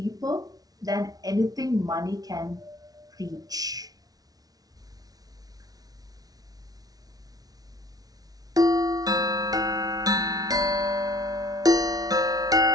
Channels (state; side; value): late; left; 0.18 ms